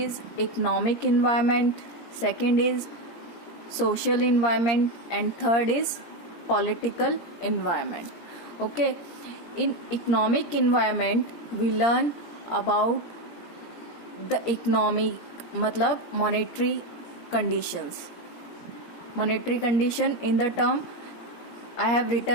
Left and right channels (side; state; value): right; late; 17 ms